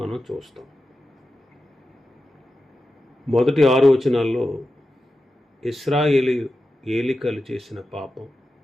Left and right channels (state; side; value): normal; both; correlation 0.91